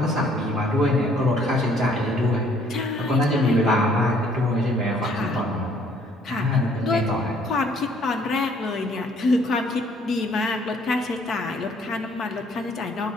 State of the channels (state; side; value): normal; both; correlation 0.62